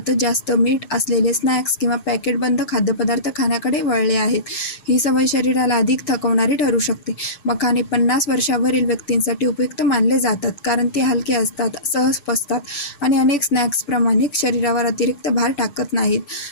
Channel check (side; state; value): right; late; 6.1 ms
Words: जास्त मीठ असलेले स्नॅक्स किंवा पॅकेटबंद खाद्यपदार्थ खाण्याकडे वळले आहेत. ही सवय शरीराला अधिक थकवणारी ठरू शकते. मखाने 50 वर्षावरील व्यक्तींसाठी उपयुक्त मानले जातात, कारण ते हलके असतात, सहज पचतात आणि अनेक स्नॅक्सप्रमाणे शरीरावर अतिरिक्त भार टाकत नाहीत.